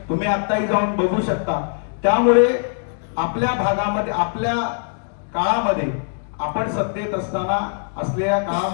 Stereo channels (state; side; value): silent; right; digital silence